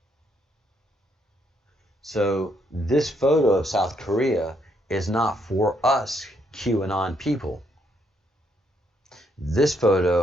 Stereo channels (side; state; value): both; normal; correlation 0.73